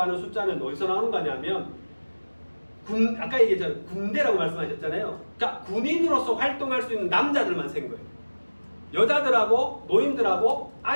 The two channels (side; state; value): both; inverted; correlation -1.00